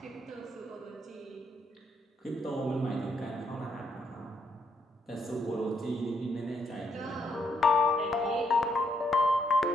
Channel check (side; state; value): both; normal; correlation 0.75